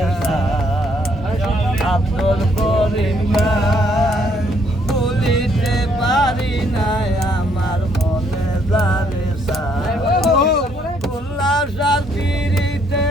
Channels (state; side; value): normal; both; correlation 0.68